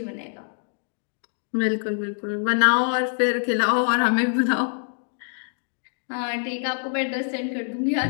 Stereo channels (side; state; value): right; silent; digital silence